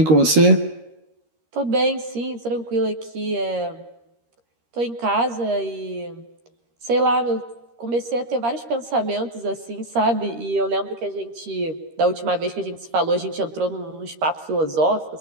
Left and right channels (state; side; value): late; left; 13 ms